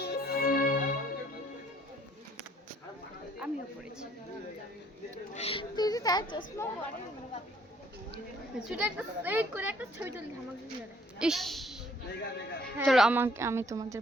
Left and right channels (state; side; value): normal; both; correlation 0.61